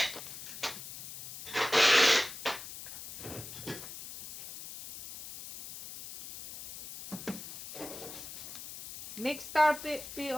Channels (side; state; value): left; noise; hiss, 11 dB below the sound